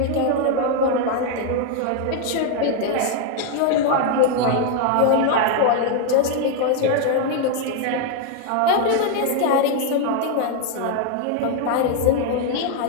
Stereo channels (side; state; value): both; different; correlation 0.00